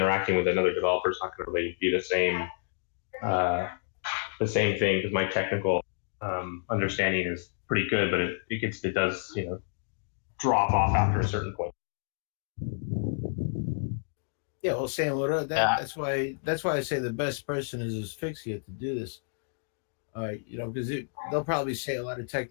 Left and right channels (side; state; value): right; silent; digital silence